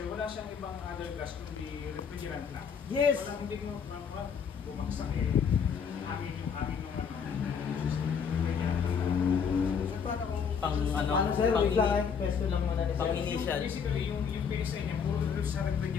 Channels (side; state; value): right; quieter; 6.7 dB